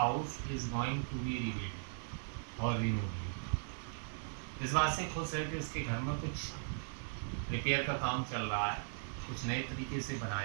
is going to be rebuilt or removed. इस बात से खुश है कि उसके घर में कुछ रिपेयर का काम चल रहा है, कुछ नए तरीके से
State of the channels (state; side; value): silent; left; digital silence